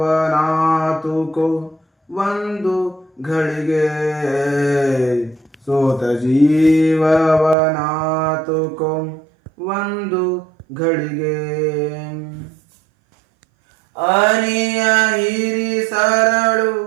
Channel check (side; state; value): left; drops out; at 7.6 s